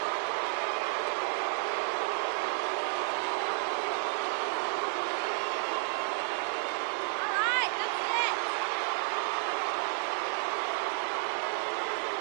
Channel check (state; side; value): silent; left; 57 dB below the other